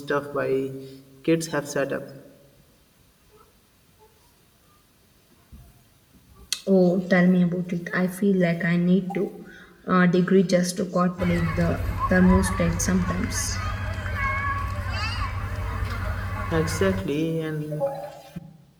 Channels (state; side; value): identical; both; correlation 1.00